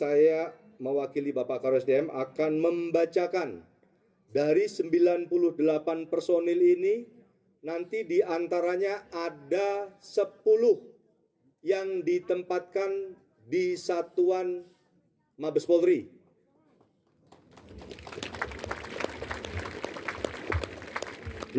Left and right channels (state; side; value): identical; both; correlation 1.00